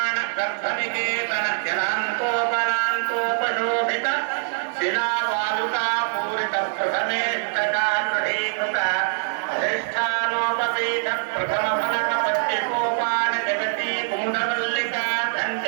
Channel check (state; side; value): silent; left; digital silence